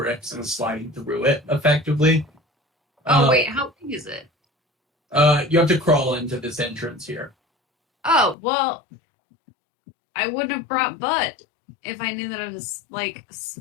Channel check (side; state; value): right; drops out; at 8.3 s